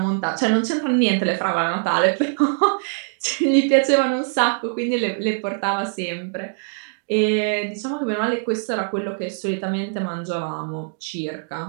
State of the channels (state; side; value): silent; left; digital silence